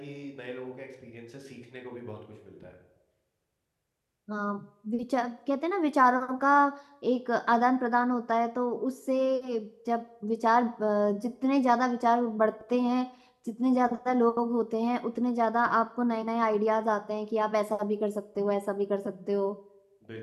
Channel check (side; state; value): both; identical; correlation 1.00